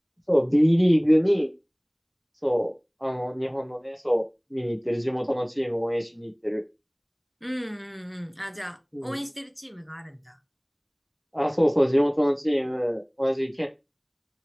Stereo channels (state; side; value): identical; both; correlation 1.00